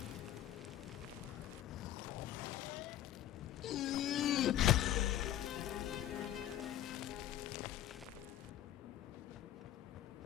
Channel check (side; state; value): right; quieter; 12.2 dB